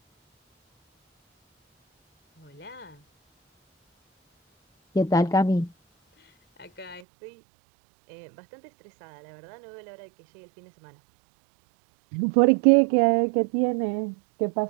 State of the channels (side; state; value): left; drops out; at 7.0 s